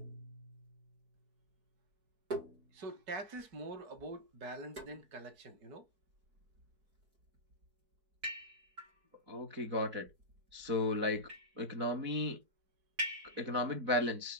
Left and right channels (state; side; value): late; left; 4.6 ms